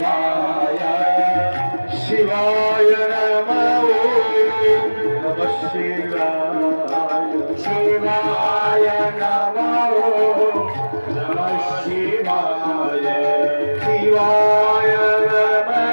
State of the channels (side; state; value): both; inverted; correlation -1.00